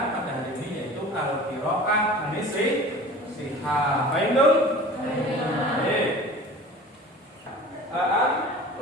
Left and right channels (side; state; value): both; normal; correlation 0.40